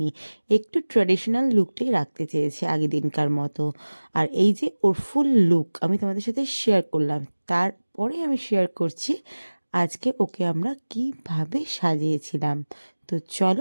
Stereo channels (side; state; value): both; inverted; correlation -1.00